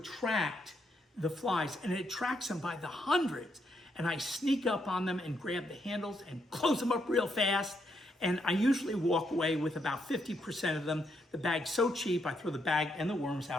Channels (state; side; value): normal; both; correlation 0.77